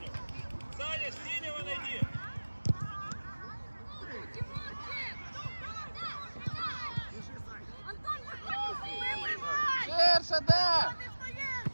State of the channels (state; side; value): inverted; both; correlation -1.00